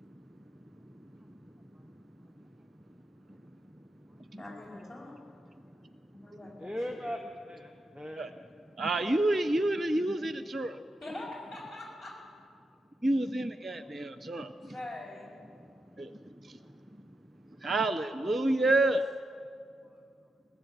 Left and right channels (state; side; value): normal; both; correlation 0.86